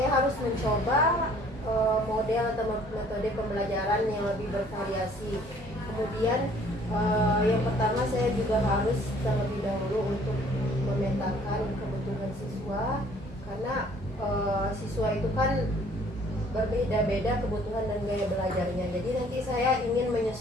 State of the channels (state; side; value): normal; both; correlation 0.57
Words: harus mencoba model atau metode pembelajaran yang lebih bervariasi. Kemudian yang pertama saya juga harus terlebih dahulu untuk memetakan kebutuhan siswa, karena siswa itu kan berbeda-beda kebutuhan dan gaya belajarnya. Jadi nanti saya ingin